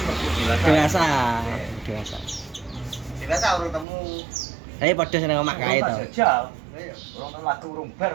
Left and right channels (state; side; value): drops out; left; at 3.9 s